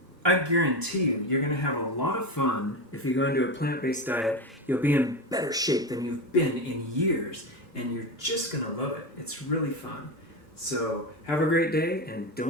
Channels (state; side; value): normal; both; correlation 0.19